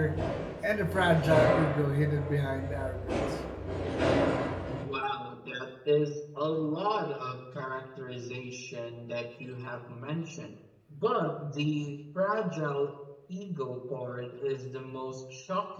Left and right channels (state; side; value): identical; both; correlation 1.00